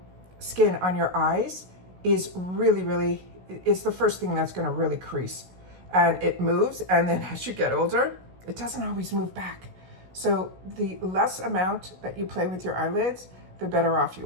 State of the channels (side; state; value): left; late; 16 ms